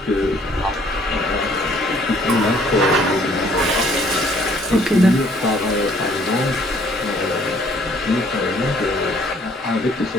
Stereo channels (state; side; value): normal; both; correlation 0.61